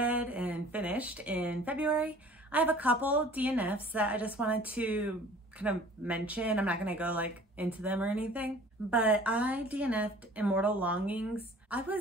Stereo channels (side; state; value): both; normal; correlation 0.49